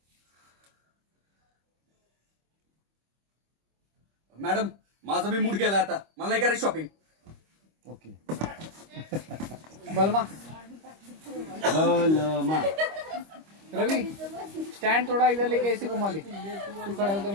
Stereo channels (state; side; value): late; left; 25 ms